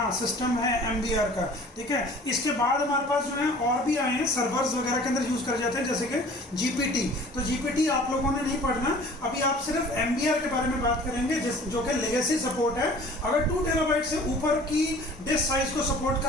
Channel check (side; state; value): both; normal; correlation 0.47